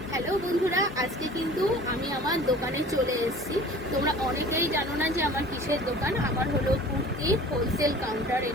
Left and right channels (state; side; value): normal; both; correlation 0.44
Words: Hello বন্ধুরা, আজকে কিন্তু আমি আমার দোকানে চলে এসেছি। তোমরা অনেকেই জানো না যে আমার কিসের দোকান। আমার হলো কুর্তি হোলসেল কাউন্টার।